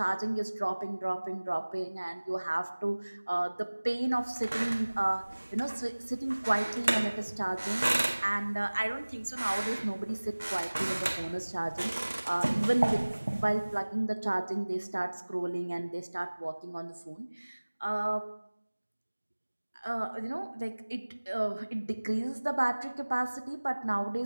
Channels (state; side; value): inverted; both; correlation -1.00